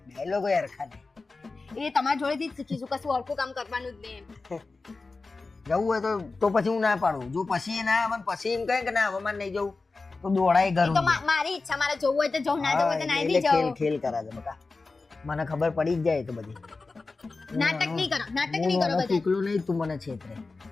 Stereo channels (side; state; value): right; quieter; 3.8 dB